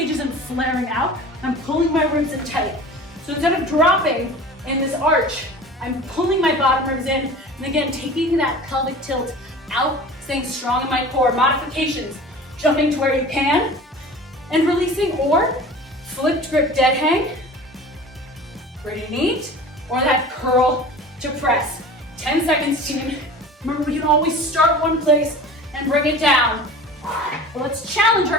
isn't flaring out. I'm pulling my ribs in tight. So instead of dropping in this arch, I'm pulling my bottom ribs in, and again, taking that pelvic tilt out, staying strong in my core. Modifications, jumping to where you can, and releasing, or flipped grip dead hang, pretty neat, or that curl to press. 10 seconds, team. Remember, we can always start one place and bring it down. Well, let's challenge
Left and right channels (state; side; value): normal; both; correlation 0.39